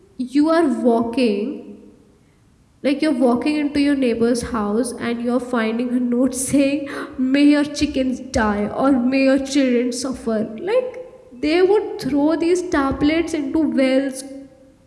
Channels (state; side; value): identical; both; correlation 1.00